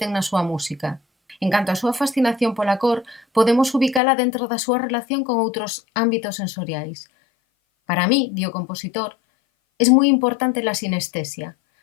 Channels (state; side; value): drops out; right; at 4.0 s